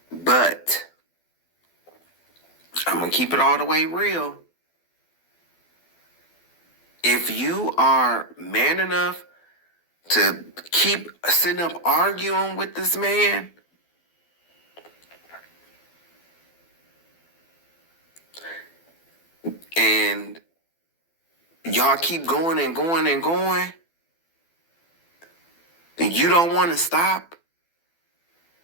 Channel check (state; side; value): late; right; 12 ms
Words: But I'm going to keep it all the way real. If you are man enough to keep sitting up arguing with this man, and y'all keep going and going and going, and you don't want to stop,